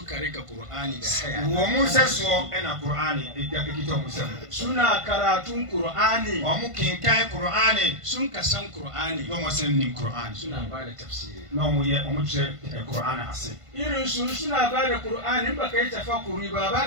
rika Qur'ani da haya wo mu saso ena Qur'ani da kito mu sam suna karatun Qur'ani wo mu kinkai Qur'ani sun ka san Qur'ani no mu san nim Qur'ani suna ba da tafsiri no mu ye mu ce Qur'ani ase irin su suna ba da Qur'ani ba kai tafakkuri ba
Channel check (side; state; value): left; late; 1.5 ms